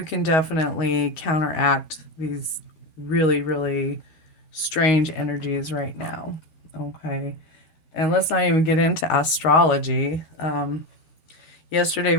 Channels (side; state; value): right; late; 13 ms